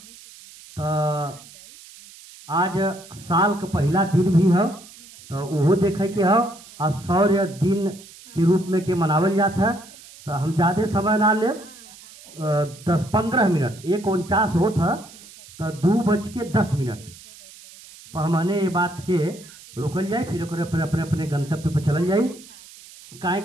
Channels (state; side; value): noise; right; hiss, 20 dB below the sound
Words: तो आज साल का पहला दिन भी है, तो वो देखे के हो और शौर्य दिन के रूप में के मनावल जाता है। तो हम ज़्यादा समय ना ले, 10-15 मिनट, 1:49 होता तो 2:10 पर हमने ये बात के रोकल जाए, फिर अपने अपने गंतव्य पर चल जाए। काहे